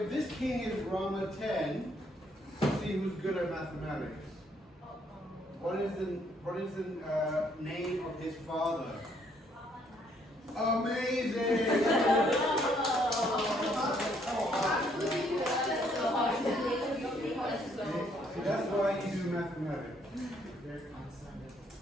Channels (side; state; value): both; normal; correlation 0.68